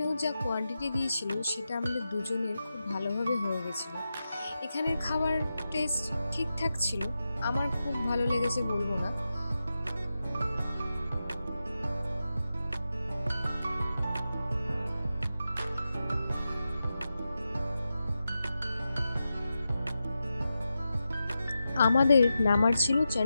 যা কোয়ান্টিটি দিয়েছিল সেটা আমাদের দুজনের খুব ভালোভাবে হয়ে গেছিল। এখানের খাবার টেস্ট ঠিকঠাক ছিল, আমার খুব ভালো লেগেছে বলবো না। আমাদের নামার ছিল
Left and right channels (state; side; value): inverted; both; correlation -0.90